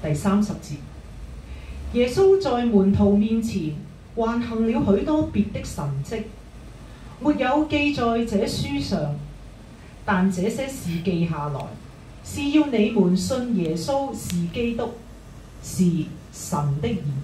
第30節，耶穌在門徒面前還行了許多別的神蹟，沒有記在這書上，但這些事記下來，是要你們信耶穌是基督，是神的兒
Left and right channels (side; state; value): both; identical; correlation 1.00